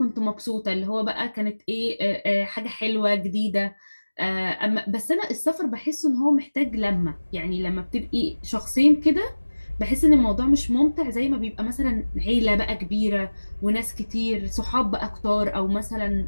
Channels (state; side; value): inverted; both; correlation -1.00